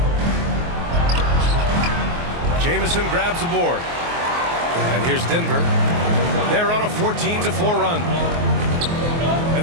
Jamison grabs the board. And here's Denver. They're on a 14-4 run.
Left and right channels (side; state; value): left; late; 24 ms